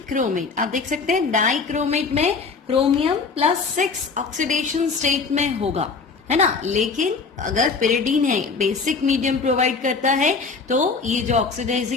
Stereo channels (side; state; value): right; quieter; 4.7 dB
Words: आप देख सकते हैं डाइक्रोमेट में क्रोमियम +6 ऑक्सीडेशन स्टेट में होगा, है ना। लेकिन अगर पिरिडीन है, बेसिक मीडियम प्रोवाइड करता है, तो ये जो